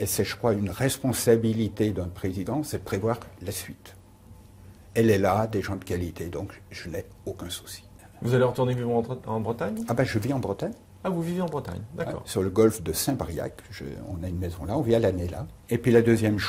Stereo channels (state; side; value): identical; both; correlation 1.00